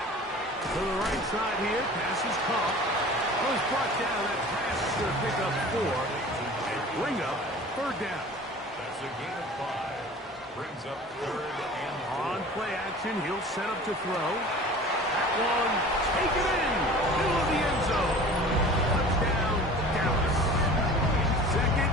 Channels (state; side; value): normal; both; correlation 0.42